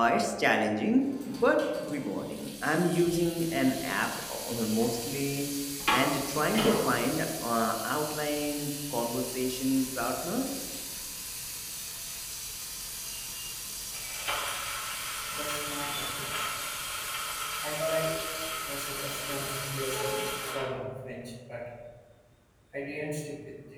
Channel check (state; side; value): identical; both; correlation 1.00